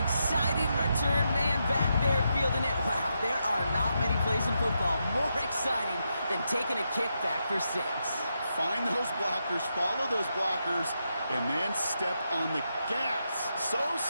exciting return man back there fielding it, wow, there are not many plays in football more exciting than taking a kick back for 6. Find those blockers, follow those blockers, and then step on the gas. So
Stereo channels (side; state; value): both; inverted; correlation -0.84